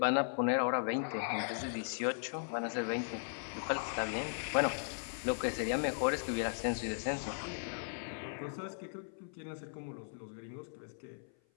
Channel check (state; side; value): silent; right; 53 dB below the other